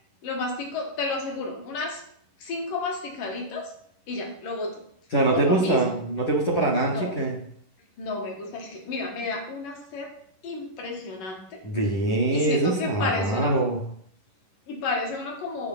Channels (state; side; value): late; right; 11 ms